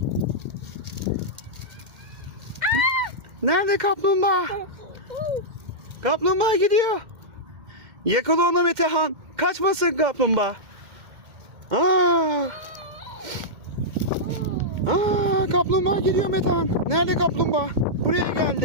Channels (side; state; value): left; late; 2.1 ms